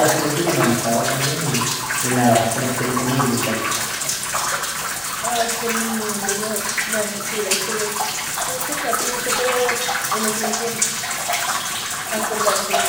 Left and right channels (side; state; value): both; identical; correlation 1.00